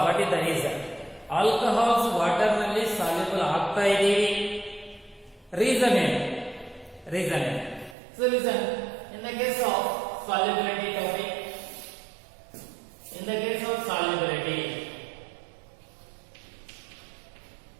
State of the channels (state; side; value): drops out; left; at 8.0 s